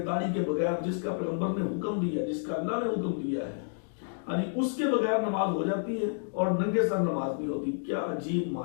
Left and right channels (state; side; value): silent; right; digital silence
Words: داڑھی کے بغیر، جس کا پیغمبر نے حکم دیا، جس کا اللہ نے حکم دیا ہے، یعنی اس کے بغیر نماز ہو جاتی ہے اور ننگے سر نماز نہیں ہوتی۔ کیا عجیب